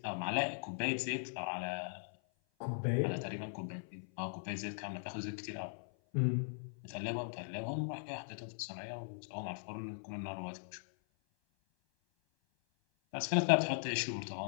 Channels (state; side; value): silent; right; 52 dB below the other